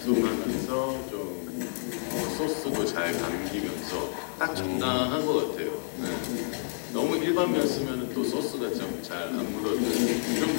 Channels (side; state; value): right; silent; digital silence